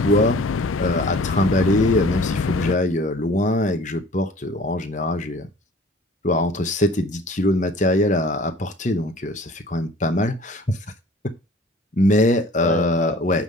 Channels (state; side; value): normal; both; correlation 0.48